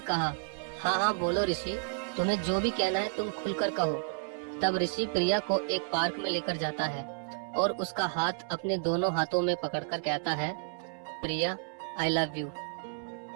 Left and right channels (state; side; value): silent; left; 57 dB below the other